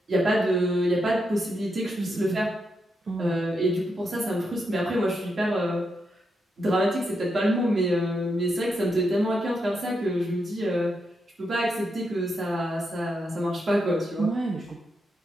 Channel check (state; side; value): normal; both; correlation 0.83